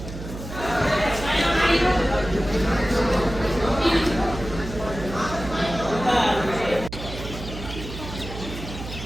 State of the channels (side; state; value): right; noise; hum, 10 dB below the sound